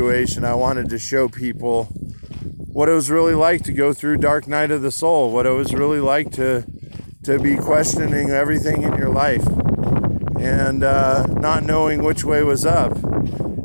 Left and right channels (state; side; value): inverted; both; correlation -1.00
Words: I wanted to show people what it was really like to go through dark night of the soul, what it was really like to be questioning everything in your life and not knowing which way was up,